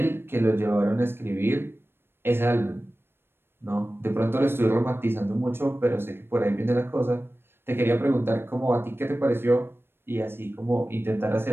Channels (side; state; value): left; late; 0.11 ms